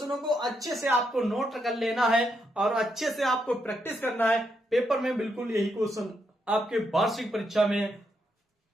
को अच्छे से आपको नोट कर लेना है और अच्छे से आपको प्रैक्टिस करना है। पेपर में बिल्कुल यही क्वेश्चन आपके वार्षिक परीक्षा में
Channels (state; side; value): normal; both; correlation 0.80